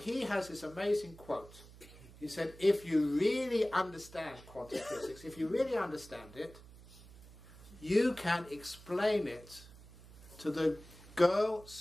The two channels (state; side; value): noise; right; hum, 20 dB below the sound